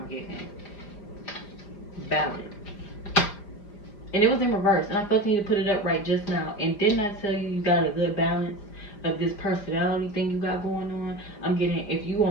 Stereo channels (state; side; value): late; right; 4.9 ms